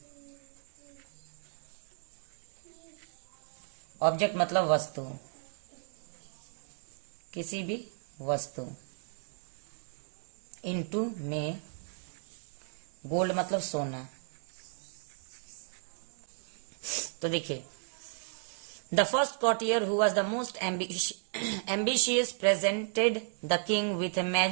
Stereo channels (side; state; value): left; silent; 55 dB below the other